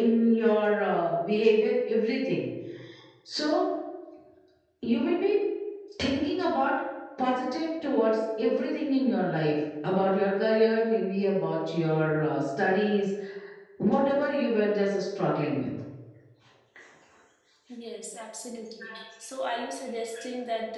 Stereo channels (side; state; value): both; identical; correlation 1.00